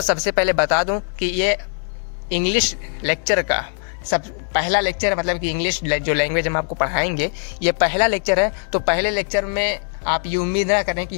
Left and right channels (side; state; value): right; silent; 62 dB below the other